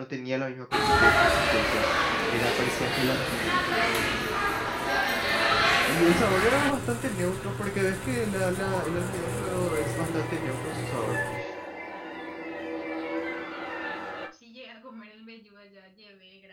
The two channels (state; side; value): identical; both; correlation 1.00